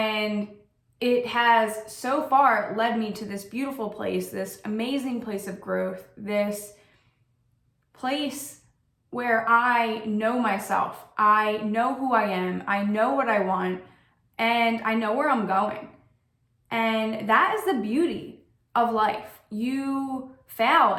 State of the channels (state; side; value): identical; both; correlation 1.00